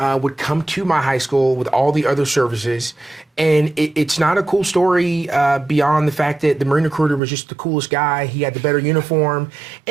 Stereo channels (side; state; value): left; drops out; at 7.2 s